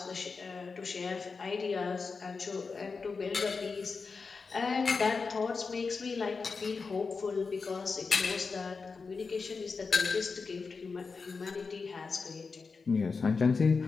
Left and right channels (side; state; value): right; quieter; 4.7 dB